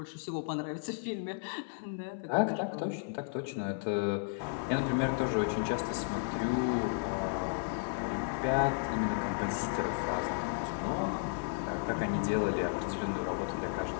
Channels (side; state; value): right; silent; 55 dB below the other